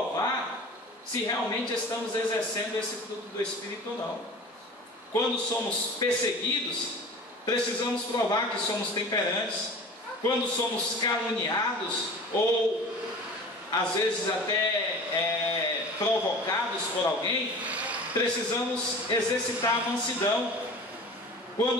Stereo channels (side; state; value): both; normal; correlation 0.39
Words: se realmente estamos exercendo esse fruto do Espírito ou não. Quando somos perseguidos, precisamos provar que somos temperantes. Quando somos caluniados, ou às vezes até provocados por alguém, precisamos exercitar a mansidão.